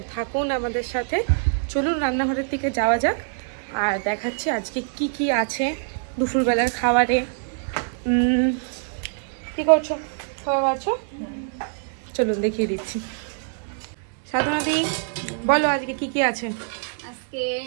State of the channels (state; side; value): silent; left; digital silence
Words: থাকুন আমাদের সাথে। চলুন রান্নাঘরের দিকে যাওয়া যাক আর দেখাচ্ছি আজকে কি কি আছে দুপুরবেলার খাবারে। কি করছো? খাওয়া আছো? চলুন দেখিয়ে দিচ্ছি। সাধনাদি বলো আজকে কি কি আছে। আজকে